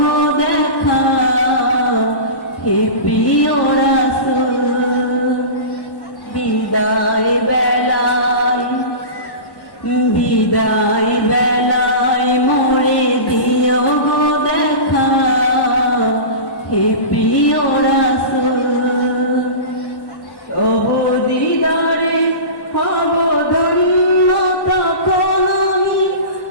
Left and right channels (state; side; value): late; right; 1.1 ms